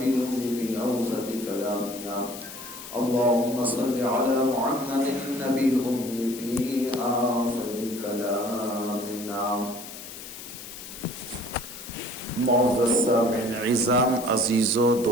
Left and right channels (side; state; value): left; noise; hiss, 12 dB below the sound